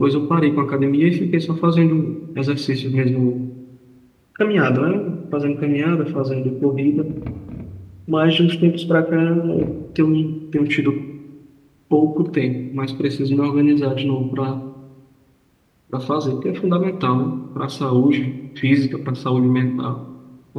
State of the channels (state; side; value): identical; both; correlation 1.00